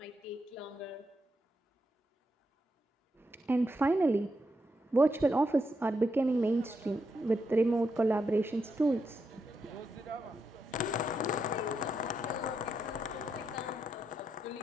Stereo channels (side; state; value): both; normal; correlation 0.83